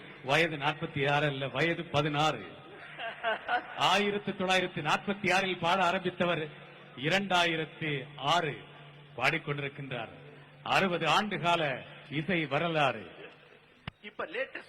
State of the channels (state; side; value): identical; both; correlation 1.00